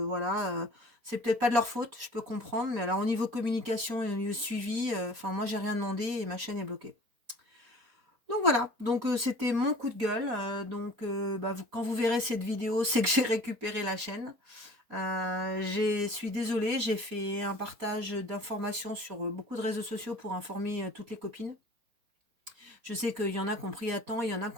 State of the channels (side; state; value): left; late; 4.2 ms